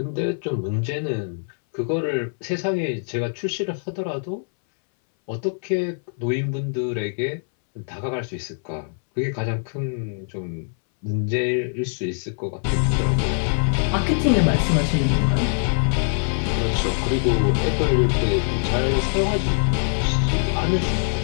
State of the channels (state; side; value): silent; right; 63 dB below the other